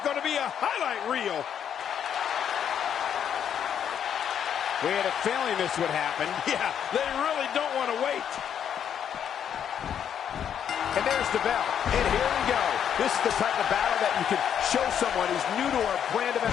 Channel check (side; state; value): right; quieter; 8.8 dB